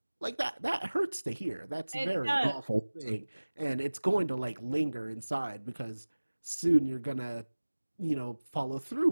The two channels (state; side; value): inverted; both; correlation -1.00